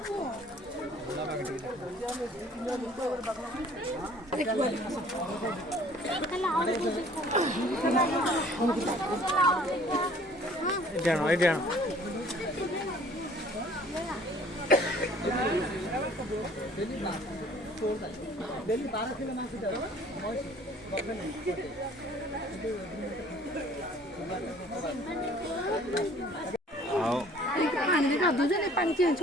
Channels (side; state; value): both; normal; correlation 0.54